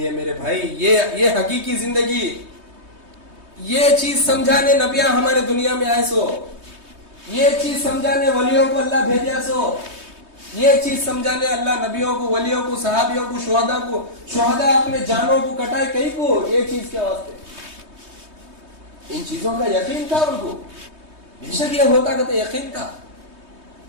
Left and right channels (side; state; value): left; late; 3.2 ms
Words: ہے میرے بھائی, یہ حقیقی زندگی. یہ چیز سمجھانے نبیاں ہمارے دنیا میں آئے سو, یہ چیز سمجھانے ولیوں کو اللہ بھیجا سو, یہ چیز سمجھانے اللہ نبیوں کو, ولیوں کو, صحابیوں کو, شہداء اپنے جانوں کو کٹائے کئی کو, یہ چیز کے واسطے. ان چیزوں کا یقین تھا ان کو, بے شک یہ ہوتا کہ یقین تھا.